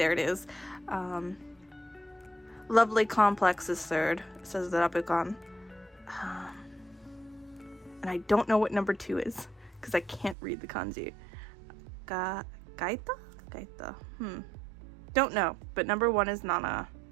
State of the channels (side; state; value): left; drops out; at 10.4 s